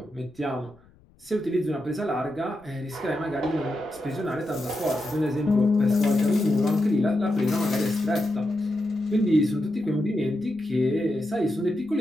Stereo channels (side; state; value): left; noise; rumble, 29 dB below the sound